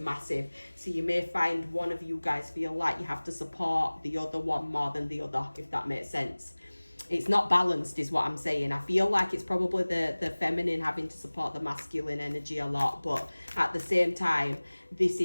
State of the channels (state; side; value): inverted; both; correlation -1.00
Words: So you may find one of you guys feel like you have to support the other one more than the other, if that makes sense. It's not balanced is what I'm saying. I feel like it's probably the feminine having to support the masculine energy a lot, but at the same time, this